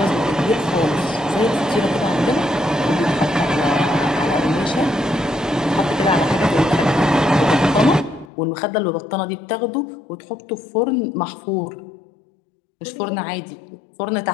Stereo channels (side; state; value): right; drops out; at 8.3 s